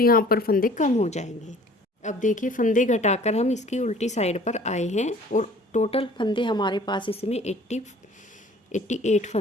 यहाँ पर फंदे कम हो जाएंगे। अब देखिए फंदे घटाकर हम इसकी उल्टी साइड पर आए हैं और टोटल फंदे हमारे पास इसमें 88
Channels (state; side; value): normal; both; correlation 0.51